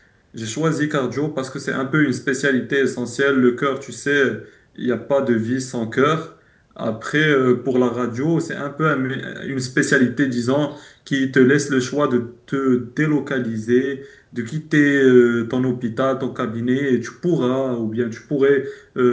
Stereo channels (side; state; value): both; identical; correlation 1.00